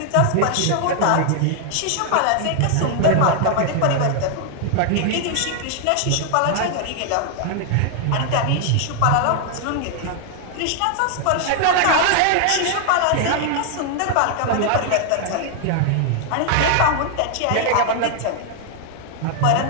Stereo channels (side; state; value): both; different; correlation 0.00